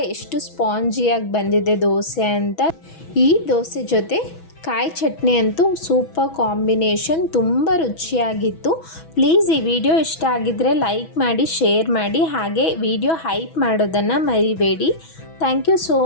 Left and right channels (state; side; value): late; right; 6.1 ms